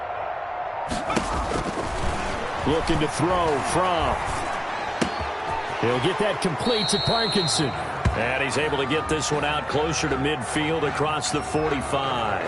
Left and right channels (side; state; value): both; identical; correlation 1.00